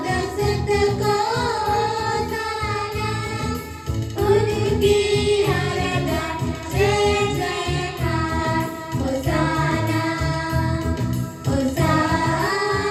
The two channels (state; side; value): identical; both; correlation 1.00